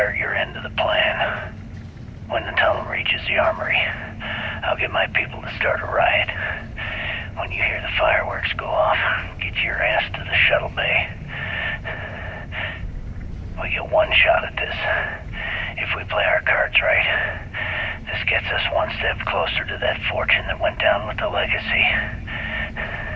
your end of the plan. When the tunnel reaches the armory, I'll get my people to start a riot. you hear the fireworks go off, get your ass to the Shuttle Bay. We get one shot at this. If we play our cards right, this gets us one step closer to that fortune that went down with the legacy.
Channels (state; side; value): identical; both; correlation 1.00